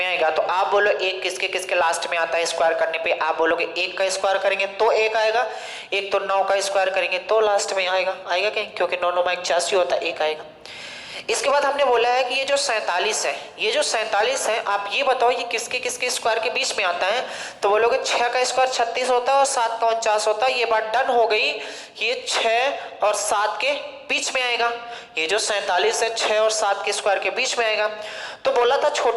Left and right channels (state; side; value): identical; both; correlation 1.00